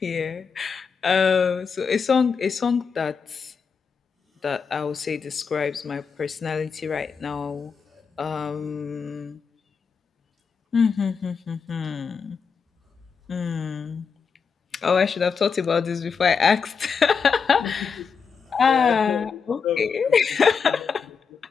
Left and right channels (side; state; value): right; quieter; 5.8 dB